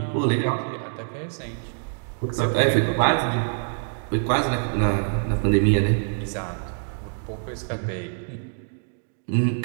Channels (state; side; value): silent; left; digital silence